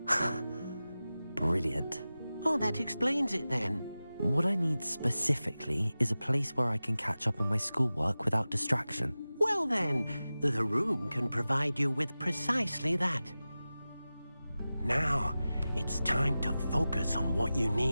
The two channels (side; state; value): both; inverted; correlation -0.96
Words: Brilliant. Oh, that explains it then. What I need specifically is a place where I can catch up on my schoolwork without distraction. Well then, the room can provide you with precisely that. Now, it's time to focus on what you